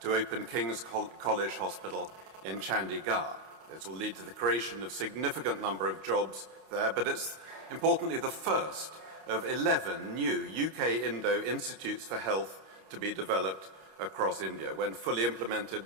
to open King's College Hospital in Chandigarh. This will lead to the creation of a significant number of jobs there, but it's importantly the first of 11 new UK-Indo Institutes for Health to be developed across India. When fully implemented,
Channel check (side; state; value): left; late; 32 ms